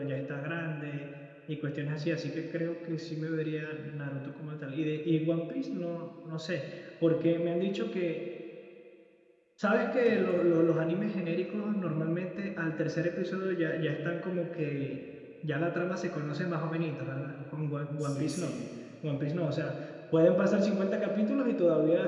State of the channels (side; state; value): both; identical; correlation 1.00